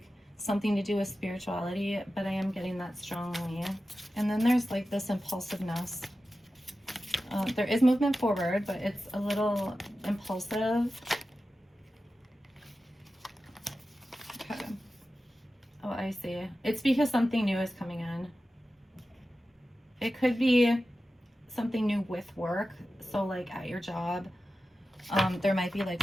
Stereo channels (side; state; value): both; normal; correlation 0.93